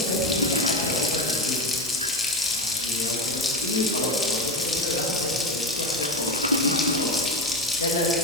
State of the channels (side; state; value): both; normal; correlation 0.21